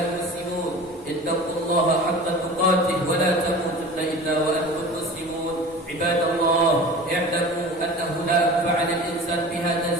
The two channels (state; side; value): normal; both; correlation 0.37